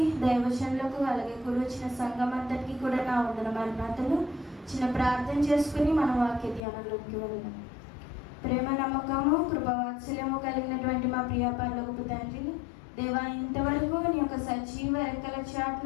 దైవజనులకు, అలాగే కూర్చొచ్చిన సంఘం అంతటికి కూడా నా వందన మరణాతలు. చిన్న ప్రార్థన చేసుకుని మన వాక్య ధ్యానంలోకి వెళ్దాం. ప్రేమ, నమ్మకము, కృపవాత్సల్యము కలిగినటువంటి మా ప్రియ పరలోకపు తండ్రి దేవా, ఇంతవరకు నీ యొక్క సజీవ రెక్కల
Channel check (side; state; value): right; drops out; at 6.6 s